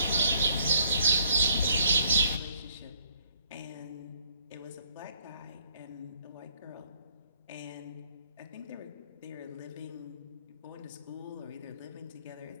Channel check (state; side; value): inverted; both; correlation -0.66